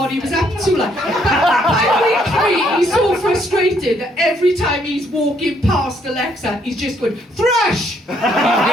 he was up to, like. By week 3, he's so frustrated that every time he's walking past Alexa, he's just going, thrush! Thrush!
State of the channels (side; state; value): both; normal; correlation 0.69